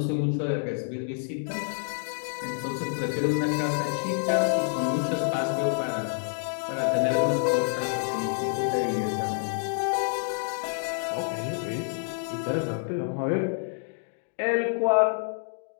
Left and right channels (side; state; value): right; silent; digital silence